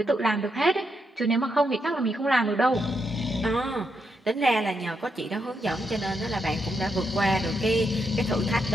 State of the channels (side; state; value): both; normal; correlation 0.81